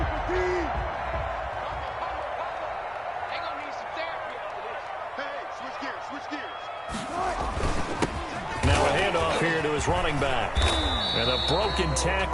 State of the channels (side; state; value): both; identical; correlation 1.00